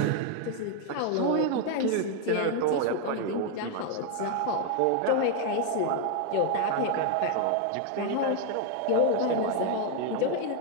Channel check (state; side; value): different; both; correlation 0.00